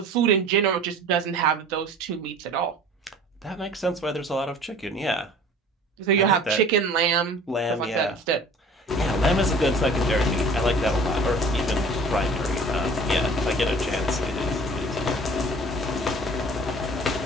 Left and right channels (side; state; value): both; normal; correlation 0.47